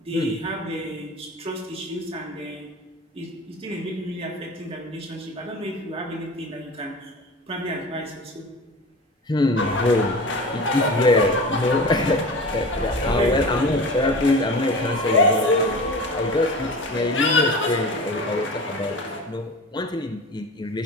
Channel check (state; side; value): normal; both; correlation 0.34